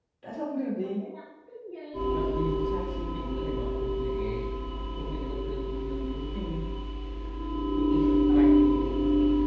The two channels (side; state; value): both; identical; correlation 1.00